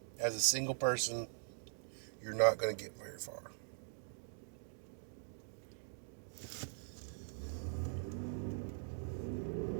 as a single person, you're not going to get very far.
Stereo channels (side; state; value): left; silent; digital silence